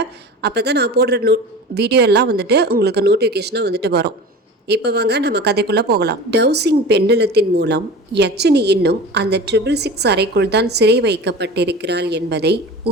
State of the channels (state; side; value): normal; both; correlation 0.35